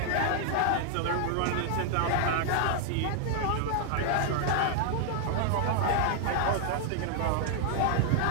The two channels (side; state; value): both; different; correlation 0.00